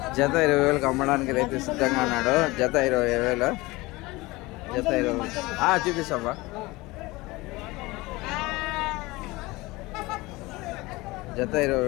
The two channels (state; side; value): quieter; right; 21.6 dB